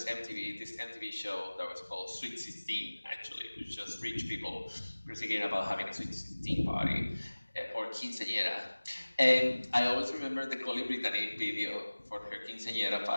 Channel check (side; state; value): both; inverted; correlation -1.00